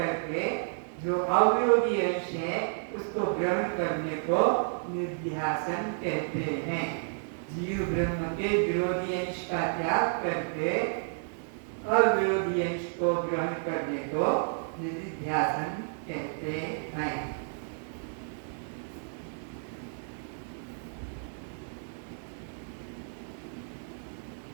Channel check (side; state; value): left; silent; digital silence